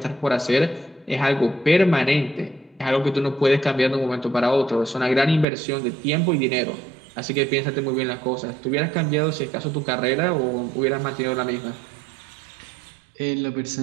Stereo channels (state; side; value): drops out; left; at 5.5 s